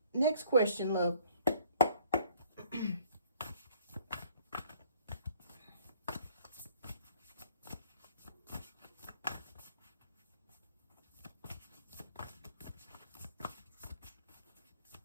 next question, love?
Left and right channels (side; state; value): both; inverted; correlation -0.59